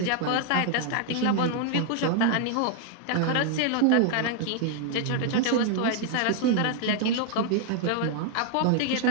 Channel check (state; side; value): different; both; correlation 0.00